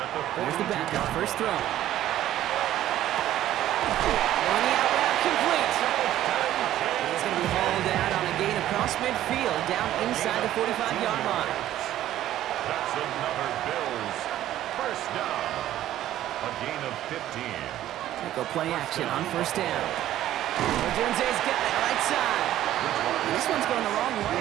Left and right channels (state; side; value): quieter; left; 13.0 dB